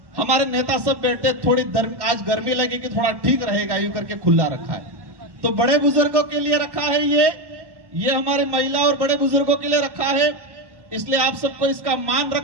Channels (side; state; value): left; late; 1.1 ms